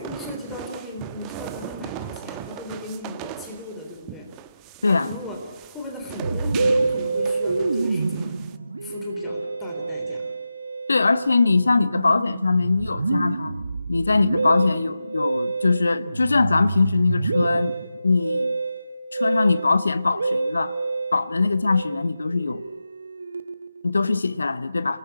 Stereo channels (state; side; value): inverted; both; correlation -0.91